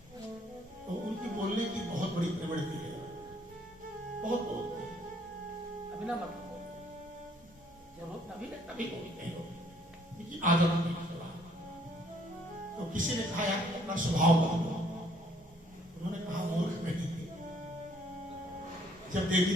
तो उनकी बोलने की बहुत बड़ी प्रवृत्ति है, बहुत बोलते हैं। अभी ना मतलब तभी बोलते हैं, उनकी आदत नहीं। तो किसी ने कहा यार अपना स्वभाव बदलो, उन्होंने कहा मूर्ख नहीं, जब देवी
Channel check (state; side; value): normal; both; correlation 0.64